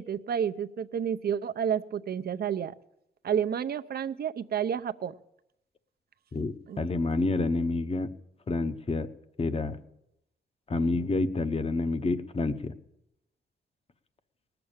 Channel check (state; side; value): normal; both; correlation 0.59